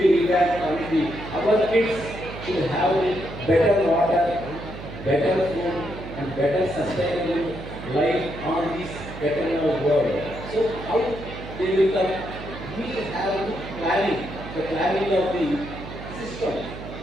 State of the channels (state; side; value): noise; right; hum, 11 dB below the sound